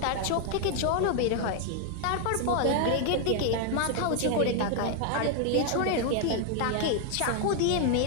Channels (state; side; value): different; both; correlation 0.00